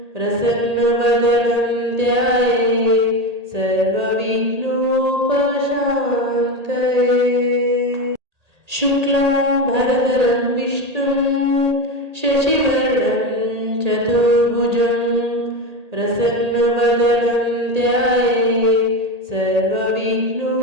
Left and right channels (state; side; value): late; left; 1.8 ms